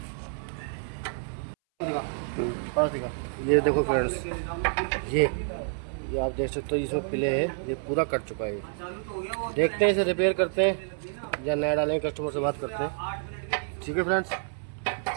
पास दिखा। ये देखो फ्रेंड्स, ये आप देख सकते हो इसमें पिले है, ये पूरा कट चुका है। देखते हैं इसे रिपेयर करते हैं या नया डालेंगे, कस्टमर से बात करते हैं। ठीक है फ्रेंड्स,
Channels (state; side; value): silent; left; 59 dB below the other